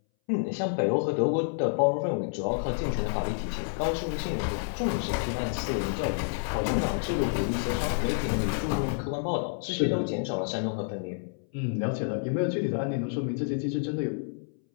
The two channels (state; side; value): silent; right; 59 dB below the other